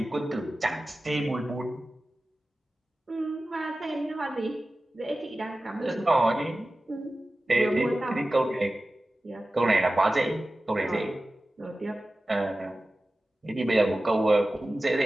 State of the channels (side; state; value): both; normal; correlation 0.95